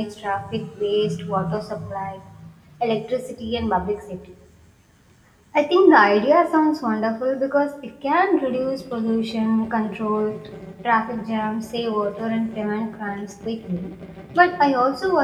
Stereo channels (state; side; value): identical; both; correlation 1.00